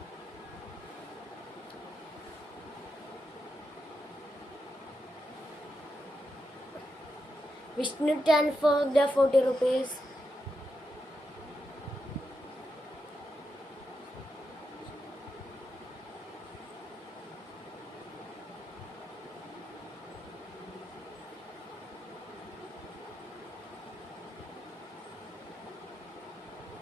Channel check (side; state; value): both; normal; correlation 0.85